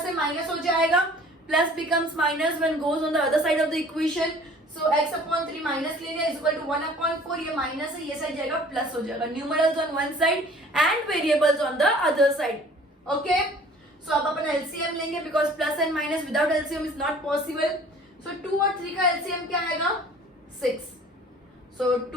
से माइनस हो जाएगा, plus becomes minus when goes on the other side of the equation. So x upon 3 minus ले लिया इज इक्वल टू 1 upon 4, ये माइनस है, ये साइड जाएगा प्लस हो जाएगा. Numerals on one side and variables on the other side. Okay, so अब अपन एलसीएम लेंगे because plus and minus without LCM is not possible. So 2 और 3 का एलसीएम क्या आएगा? 6. सो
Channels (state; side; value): normal; both; correlation 0.50